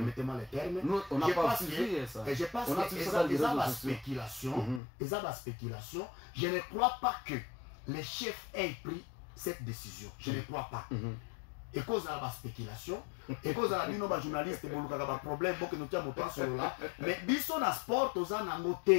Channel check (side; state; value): right; drops out; at 4.8 s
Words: le terme. Nous, on n'a pas suivi ça. Et je pense que ils ont la spéculation. Je ne crois pas que les chefs aient pris cette décision. Je ne crois pas. Et cause de la spéculation, et cause de la nos journalistes, il y a un problème, que nous tient mon sur là. Mais biso na sport, tous en